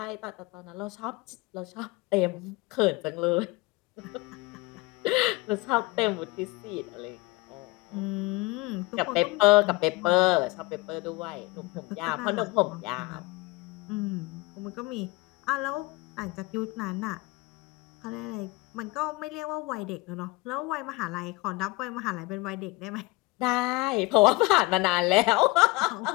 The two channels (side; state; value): right; quieter; 23.0 dB